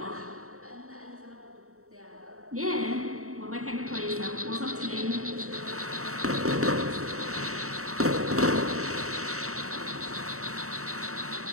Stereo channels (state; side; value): late; left; 0.64 ms